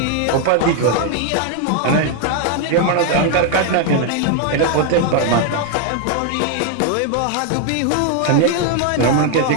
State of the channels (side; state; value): both; different; correlation 0.00